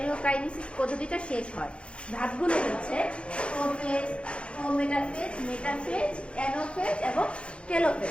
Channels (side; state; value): right; late; 0.058 ms